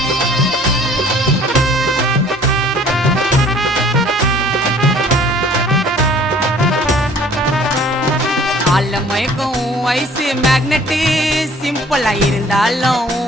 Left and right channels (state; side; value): normal; both; correlation 0.53